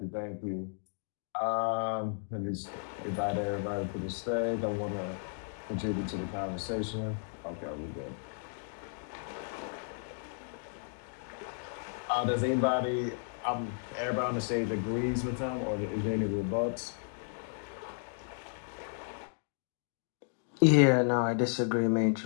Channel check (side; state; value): right; silent; digital silence